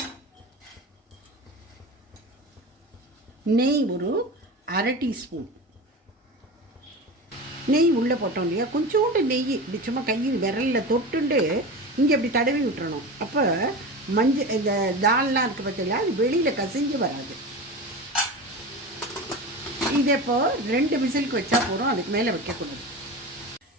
நெய் ஒரு 1/2 டீஸ்பூன். நெய் உள்ளே போட்டோம் இல்லையா, கொஞ்சோண்டு நெய் இப்படி சும்மா கையில் விரலில் தொட்டுண்டு இங்கே இப்படி தடவி விட்டுறணும். அப்போ இந்த தால்லாம் இருக்குது பார்த்தீங்களா, அது வெளியில் கசிஞ்சு வராது. இதே இப்போ 2 விசிலுக்கு வச்சா போகிறோம், அதுக்கு மேலே வைக்கக்கூடாது.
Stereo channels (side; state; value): both; normal; correlation 0.28